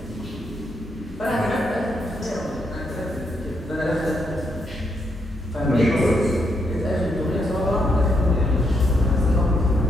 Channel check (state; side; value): normal; both; correlation 0.78